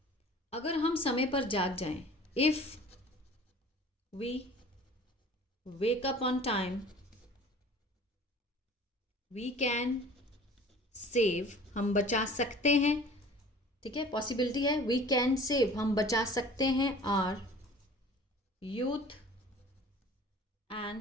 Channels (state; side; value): normal; both; correlation 0.46